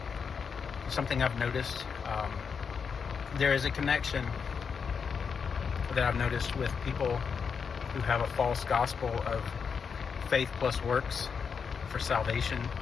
Something I've noticed. There is a connection that I've noticed with people who have a false gospel of faith plus works for salvation,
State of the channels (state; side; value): quieter; right; 6.1 dB